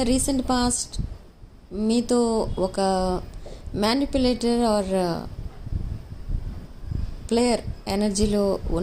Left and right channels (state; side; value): identical; both; correlation 1.00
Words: recent past మీతో ఒక మ్యానిపులేటర్ ఆర్ ప్లేయర్ ఎనర్జీలో